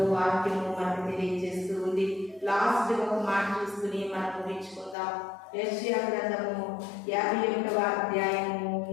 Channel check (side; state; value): right; drops out; at 5.0 s